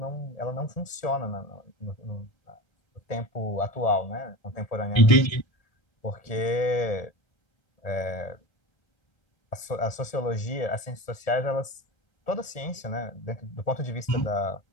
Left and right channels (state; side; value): late; right; 1.8 ms